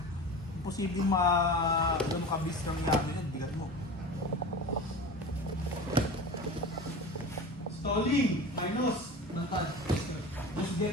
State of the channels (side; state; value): both; normal; correlation 0.32